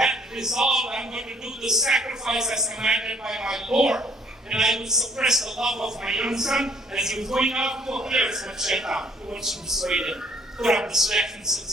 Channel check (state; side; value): normal; both; correlation 0.61